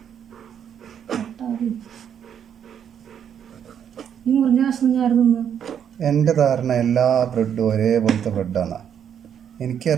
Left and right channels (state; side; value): quieter; left; 8.6 dB